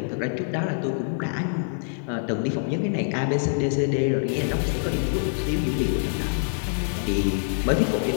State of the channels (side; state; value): right; silent; 62 dB below the other